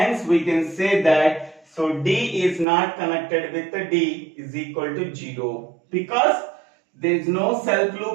we can say that, so D is not connected with D is equal to 0, because there is no self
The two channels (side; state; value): left; drops out; at 2.7 s